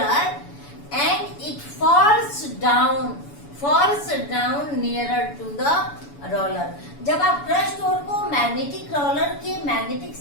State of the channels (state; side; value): late; right; 7.0 ms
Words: and it falls down nearer to the roller. जब आप क्रश्ड ओर को मैग्नेटिक रोलर के मैग्नेटिक